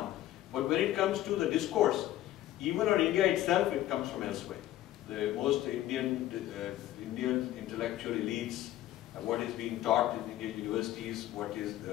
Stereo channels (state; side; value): quieter; right; 13.8 dB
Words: But when it comes to the discourse, even on India itself, it comes from elsewhere. The most Indian intellectual elites, what is being taught in Indian universities, what is